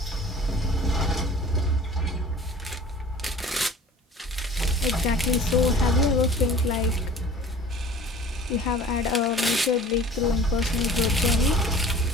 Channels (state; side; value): normal; both; correlation 0.46